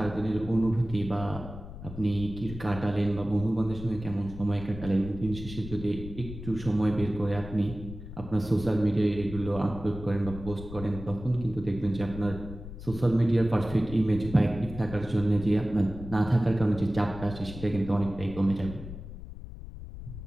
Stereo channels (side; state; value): left; noise; rumble, 12 dB below the sound